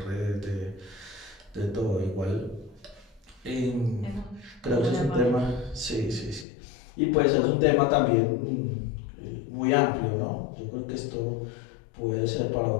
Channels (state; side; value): drops out; right; at 6.5 s